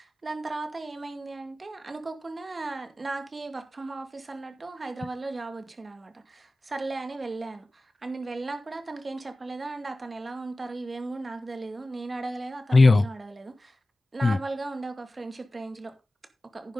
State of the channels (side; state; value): both; normal; correlation 0.96